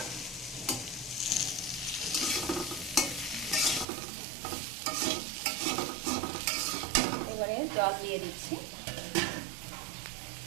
এবারে জল দিয়ে দিচ্ছি।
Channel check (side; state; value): left; drops out; at 3.9 s